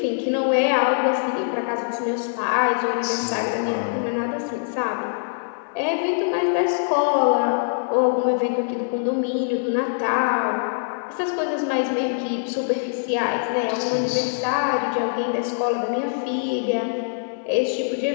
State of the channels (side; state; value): right; silent; 63 dB below the other